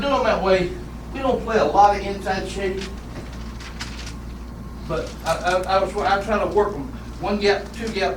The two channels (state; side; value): identical; both; correlation 1.00